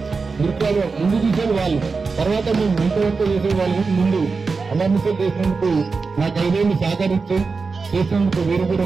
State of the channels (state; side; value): quieter; left; 4.5 dB